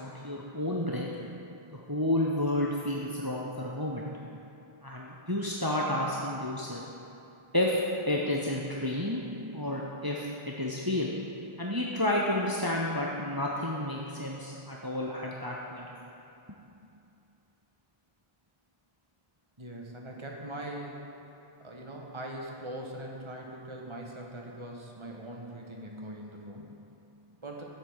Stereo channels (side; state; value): left; late; 1.0 ms